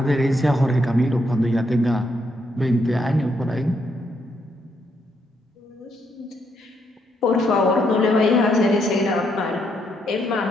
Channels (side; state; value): both; normal; correlation 0.76